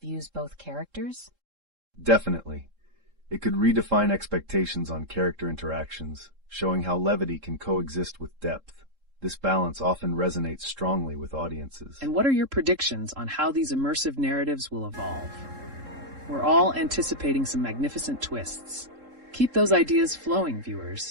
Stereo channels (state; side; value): late; left; 3.7 ms